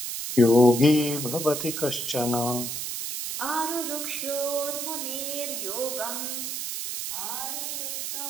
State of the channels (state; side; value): noise; right; hiss, 4 dB below the sound